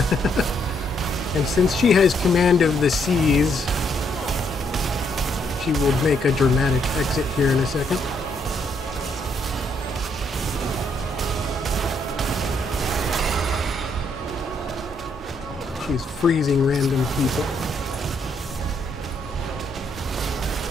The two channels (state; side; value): normal; both; correlation 0.73